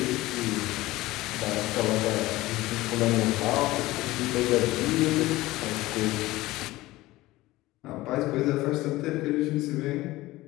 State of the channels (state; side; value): quieter; right; 18.3 dB